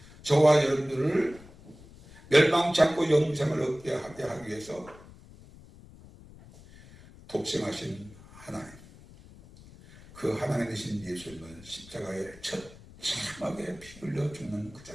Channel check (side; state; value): left; noise; rumble, 21 dB below the sound